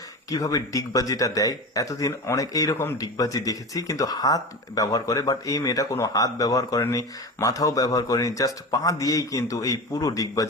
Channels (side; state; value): both; normal; correlation 0.28